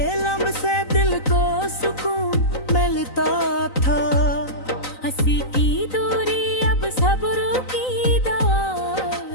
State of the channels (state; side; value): late; right; 3.9 ms